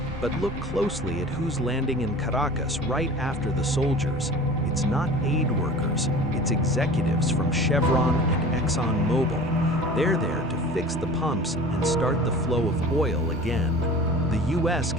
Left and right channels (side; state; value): both; normal; correlation 0.40